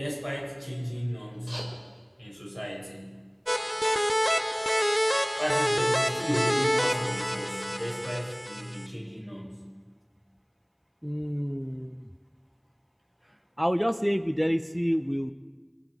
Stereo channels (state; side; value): identical; both; correlation 1.00